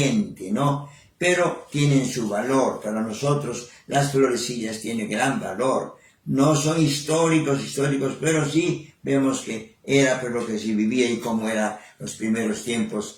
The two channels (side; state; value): both; identical; correlation 1.00